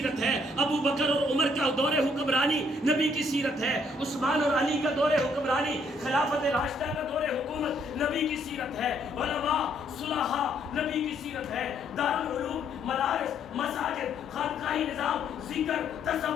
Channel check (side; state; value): both; normal; correlation 0.68